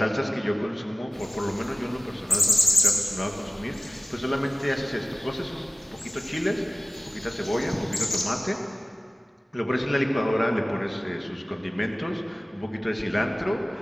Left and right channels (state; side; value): normal; both; correlation 0.97